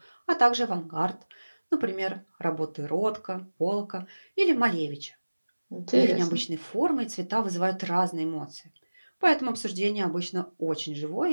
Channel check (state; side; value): inverted; both; correlation -1.00